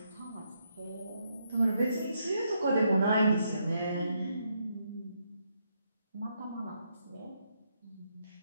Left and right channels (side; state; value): both; inverted; correlation -0.78